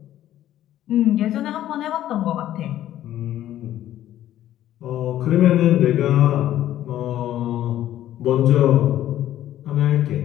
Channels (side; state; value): right; quieter; 12.6 dB